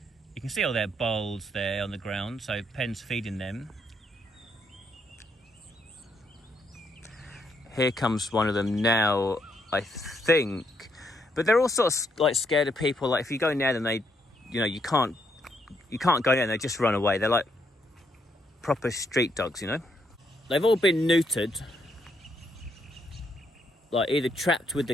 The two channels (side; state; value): both; normal; correlation 0.75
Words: you can see all their bowls there on the ground. So Penn's feeding them. Here comes one of them now, I think. But they're all sort of like scared of people. Like if you go near them, they, you know, you can't go near them, they just run away. They're like proper street dogs, you know. They've all been neutered. Like either trapped with the